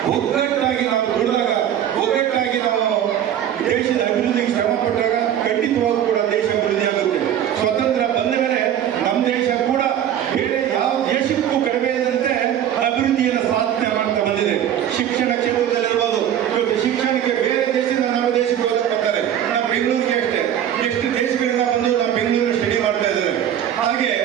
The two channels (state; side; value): quieter; left; 10.3 dB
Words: ಒಗ್ಗಟ್ಟಾಗಿ ನಾವು ದುಡಿದಾಗ, ಒಗ್ಗಟ್ಟಾಗಿ ನಾವು ದೇಶದ ಅಭಿವೃದ್ಧಿಗೆ ಶ್ರಮ ಪಟ್ಟಾಗ ಖಂಡಿತವಾಗೂ ಕೂಡ ದೇಶ ಅಭಿವೃದ್ಧಿ ಆಗುತ್ತೆ. ಸ್ವತಂತ್ರ ಬಂದ ಮೇಲೆ ನಮ್ಮ ದೇಶ ಕೂಡ ಬೇರೆ ಯಾವ ದೇಶಕ್ಕೂ ಕಡಿಮೆ ಇದ್ದಂತೆ ಅಭಿವೃದ್ಧಿಯನ್ನು ಸಾಧನೆ ಮಾಡ್ತಾ ಬಂದಿದೆ. ಶಿಕ್ಷಣ ಕ್ಷೇತ್ರದಲ್ಲಿರ್ಬೋದು. ಇವತ್ತು ಶಿಕ್ಷಣಕ್ಕೆ ಬೇರೆ ದೇಶದಿಂದ ನಮ್ಮ ದೇಶಕ್ಕೆ ಹೋಗಕ್ಕೆ ಬರ್ತಾರೆ. ನಮ್ಮ ಬೆಂಗಳೂರಿಗೆ ಅಷ್ಟೇ ಎಷ್ಟು ದೇಶಗಳಿಂದ ಬಂದು ನಮ್ಮ ಬೆಂಗಳೂರು ಸ್ಟಡಿ ಮಾಡ್ತಾ ಇದ್ದಾರೆ. ಹಾಗೆ